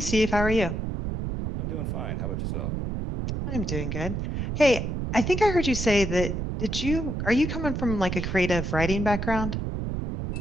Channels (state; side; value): noise; right; rumble, 3 dB below the sound